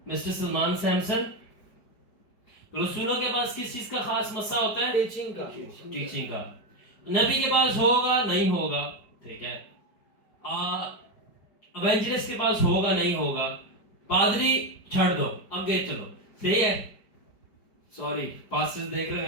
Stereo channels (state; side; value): late; right; 4.9 ms